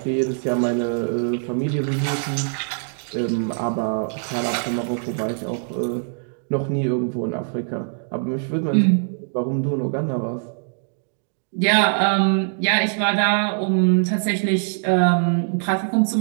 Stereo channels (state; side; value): silent; left; digital silence